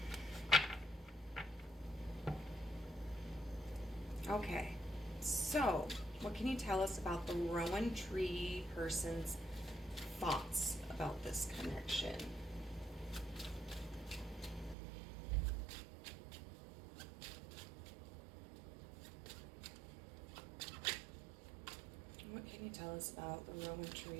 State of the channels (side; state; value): left; drops out; at 14.8 s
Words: Okay, so what can you tell us about the Rowan tree person's thoughts about this connection? What can you tell us about the Rowan